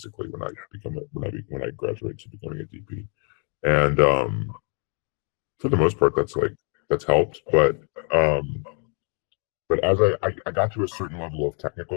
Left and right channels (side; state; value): right; quieter; 38.7 dB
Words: when I graduate to becoming a DP. And for the most part, that's helped, but as I got to a certain level of